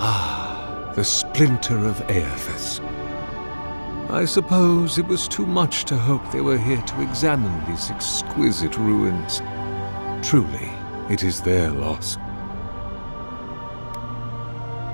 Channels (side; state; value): both; inverted; correlation -1.00